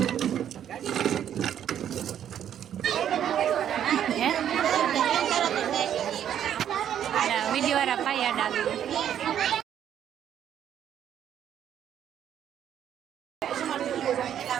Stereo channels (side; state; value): left; quieter; 9.9 dB